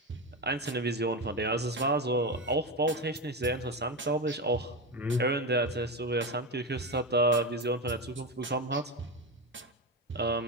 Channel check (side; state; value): both; normal; correlation 0.16